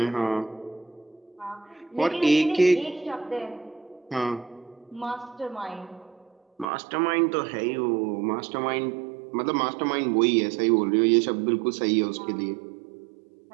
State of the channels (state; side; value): drops out; left; at 6.7 s